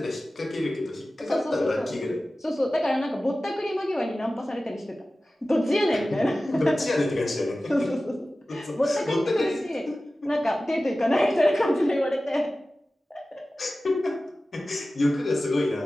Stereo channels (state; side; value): normal; both; correlation 0.96